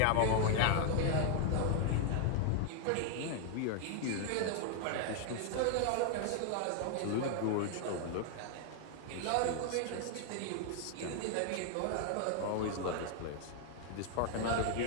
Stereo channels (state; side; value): different; both; correlation 0.00